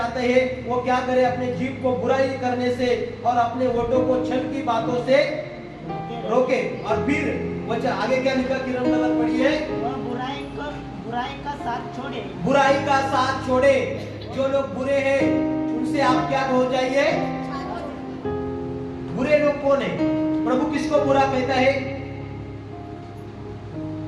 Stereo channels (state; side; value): identical; both; correlation 1.00